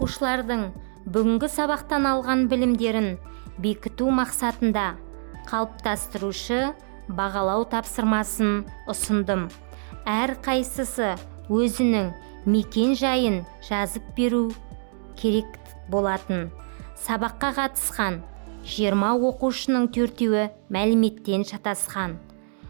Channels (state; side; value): silent; left; digital silence